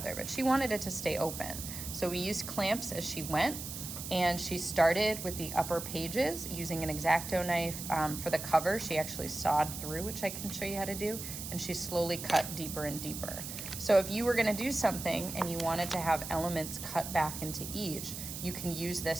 But she wanted it to stay open, so we used clamps as she went, and she started with the upper pages using an X-Acto knife. For the cover, she actually sawed through, which I can show you how to do, and she slowly cut deeper and deeper. So if you were going to do something and you wanted to have elements cut back into each, you can use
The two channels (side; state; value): right; noise; hiss, 8 dB below the sound